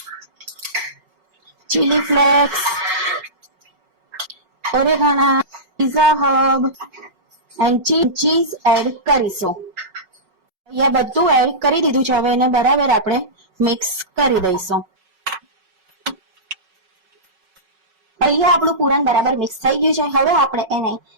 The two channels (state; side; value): late; left; 5.4 ms